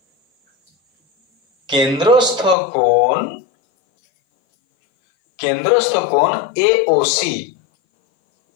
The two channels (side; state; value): right; drops out; at 2.6 s